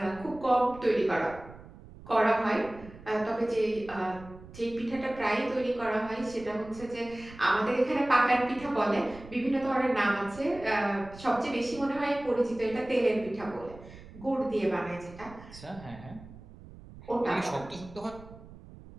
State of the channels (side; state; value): right; noise; rumble, 18 dB below the sound